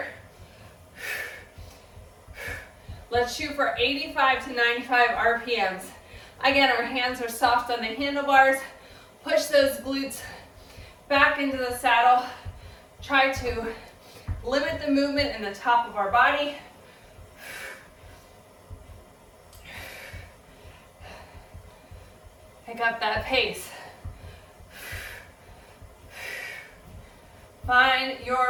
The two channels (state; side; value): identical; both; correlation 1.00